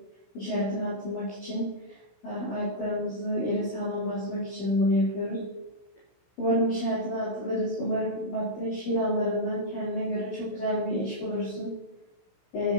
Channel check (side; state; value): right; late; 16 ms